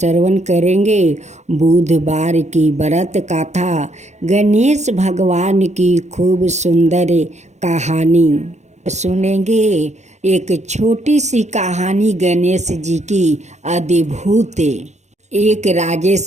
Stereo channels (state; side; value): late; left; 0.33 ms